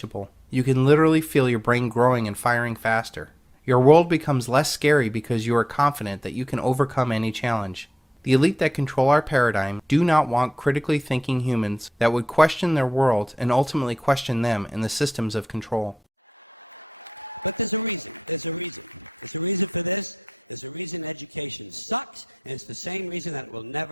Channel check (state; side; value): normal; both; correlation 0.87